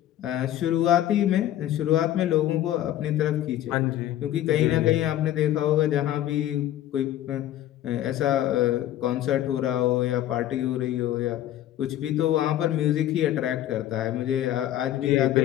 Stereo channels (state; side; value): quieter; right; 12.6 dB